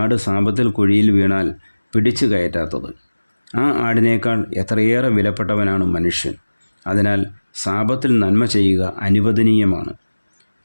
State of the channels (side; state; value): both; inverted; correlation -1.00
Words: സാബത്തിൽ കുഴിയിൽ വീണാൽ പിടിച്ചു കയറ്റാത്തത്? ആ ആടിനേക്കാൾ എത്രയേറെ വിലപ്പെട്ടവനാണ് മനുഷ്യൻ. അതിനാൽ സാബത്തിൽ നന്മ ചെയ്യുക അനുവദനീയമാണ്.